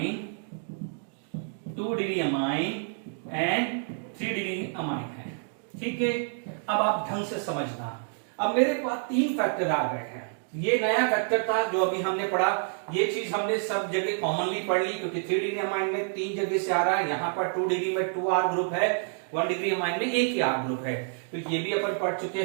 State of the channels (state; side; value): silent; left; 59 dB below the other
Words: 2 degree amine and 3 degree amine है। ठीक है, अब आप ढंग से समझना। अब मेरे पास 3 फैक्टर आ गए हैं। ये नया फैक्टर था जो अभी हमने पढ़ा, ये चीज हमने सब जगह कॉमनली पढ़ ली, क्योंकि 3 डिग्री अमाइन में 3 जगह से आ रहा है। यहाँ पर 2 डिग्री में 2 R ग्रुप है, 1 डिग्री अमाइन में एक ही R ग्रुप है, तो ये भी अपन पढ़ चुके